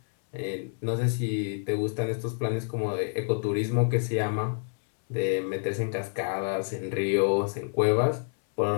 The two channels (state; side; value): silent; right; 59 dB below the other